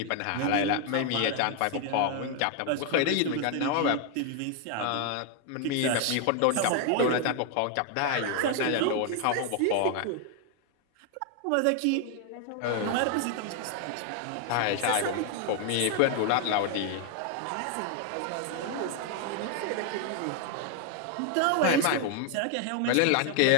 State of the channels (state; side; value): different; both; correlation 0.00